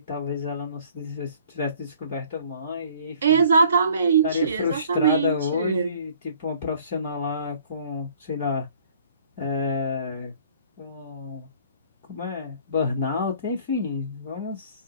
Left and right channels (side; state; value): both; inverted; correlation -0.56